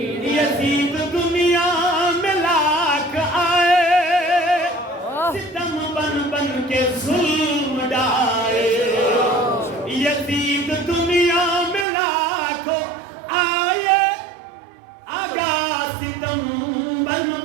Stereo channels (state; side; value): drops out; left; at 11.9 s